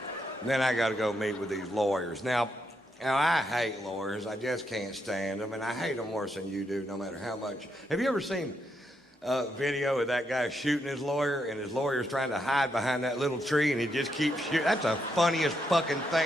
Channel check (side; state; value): both; normal; correlation 0.80